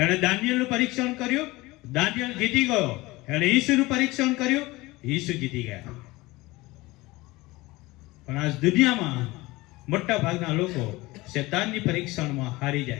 દાનિયેલનું પરીક્ષણ કર્યું, દાનિયેલ જીતી ગયો. એણે ઈસુનું પરીક્ષણ કર્યું, ઈસુ જીતી ગયા. પણ આજ દુનિયામાં મોટા ભાગના લોકો શેતાનની પરીક્ષણમાં હારી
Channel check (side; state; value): right; quieter; 20.8 dB